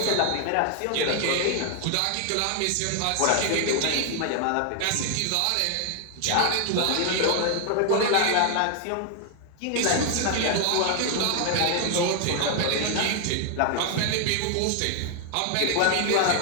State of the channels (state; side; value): different; both; correlation 0.00